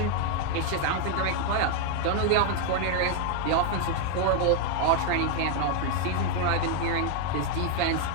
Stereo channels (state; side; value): different; both; correlation 0.00